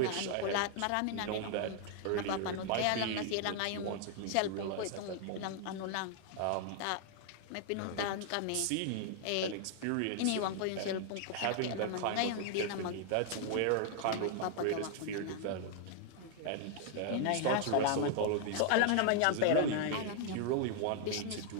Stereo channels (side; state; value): both; different; correlation 0.00